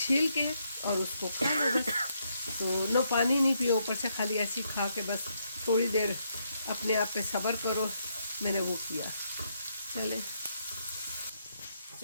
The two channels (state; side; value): inverted; both; correlation -0.76